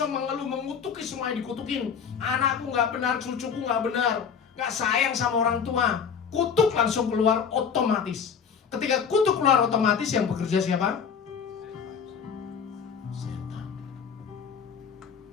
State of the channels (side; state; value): right; quieter; 6.8 dB